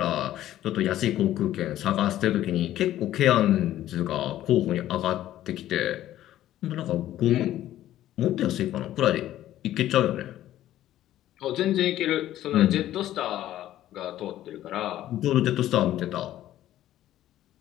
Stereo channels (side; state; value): right; quieter; 13.3 dB